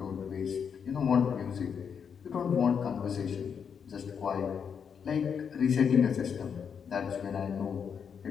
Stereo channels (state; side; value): quieter; right; 7.0 dB